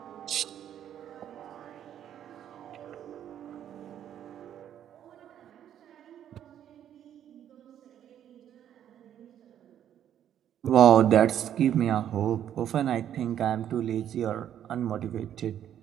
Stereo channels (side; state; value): left; quieter; 10.3 dB